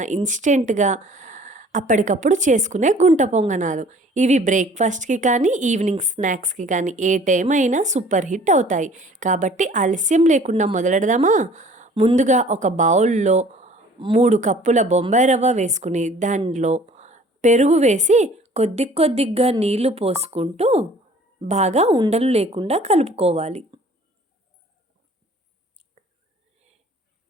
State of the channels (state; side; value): normal; both; correlation 0.51